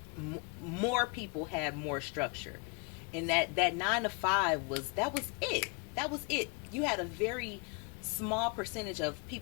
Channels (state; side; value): quieter; right; 32.5 dB